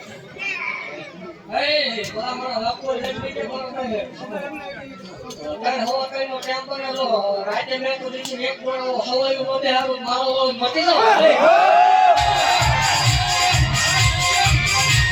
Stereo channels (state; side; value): identical; both; correlation 1.00